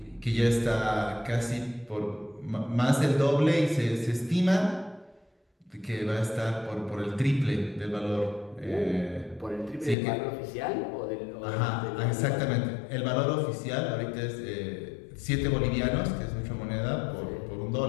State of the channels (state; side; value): drops out; right; at 10.0 s